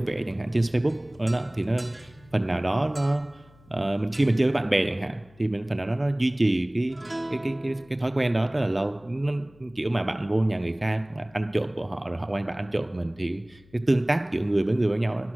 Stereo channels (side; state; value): left; noise; hum, 27 dB below the sound